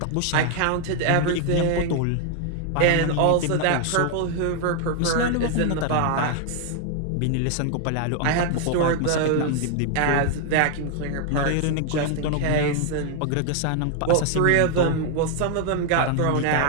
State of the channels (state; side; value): different; both; correlation 0.00